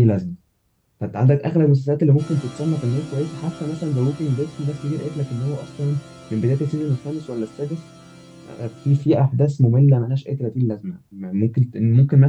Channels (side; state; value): both; identical; correlation 1.00